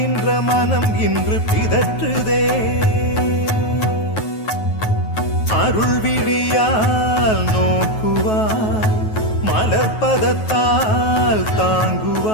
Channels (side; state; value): right; late; 9.3 ms